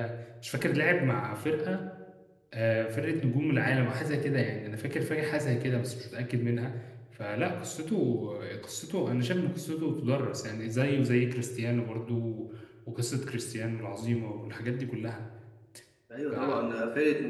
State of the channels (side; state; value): both; identical; correlation 1.00